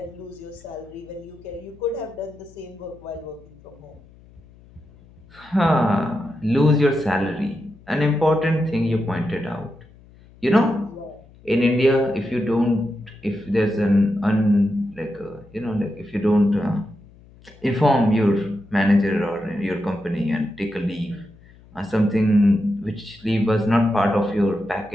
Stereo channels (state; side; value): noise; left; hum, 25 dB below the sound